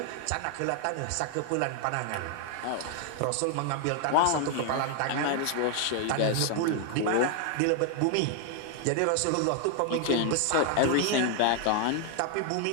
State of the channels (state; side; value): different; both; correlation 0.00